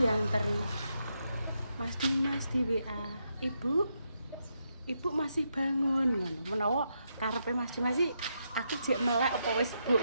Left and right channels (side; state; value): both; inverted; correlation -0.81